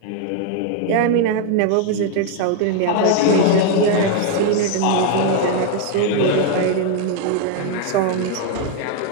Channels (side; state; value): both; different; correlation 0.01